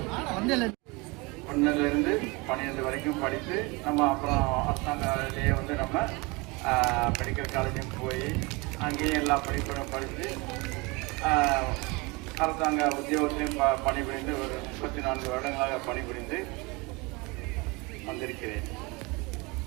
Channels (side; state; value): left; quieter; 26.2 dB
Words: ஒன்றிலிருந்து 12 வரைக்கும் படித்து நம்ம அப்புறம் அரசாங்கத்திலேயே வந்து நம்ம மெடிக்கல் காலேஜும் போய் அங்கேயும் எல்லா படிப்பும் படித்து அரசாங்க உத்தியோகத்திலையும் பணிபுரிந்து ஒரு 34 வருடங்களாக பணிபுரிந்து வந்திருக்கிறேன்.